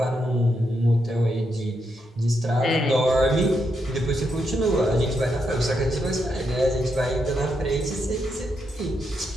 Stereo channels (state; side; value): normal; both; correlation 0.81